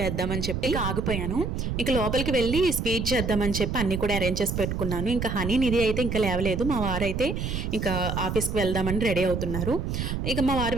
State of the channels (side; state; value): right; noise; rumble, 3 dB below the sound